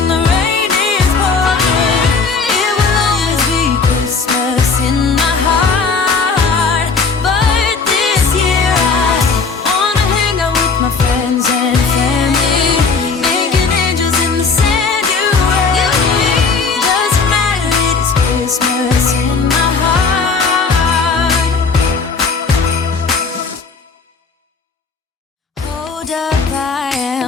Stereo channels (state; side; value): quieter; right; 4.7 dB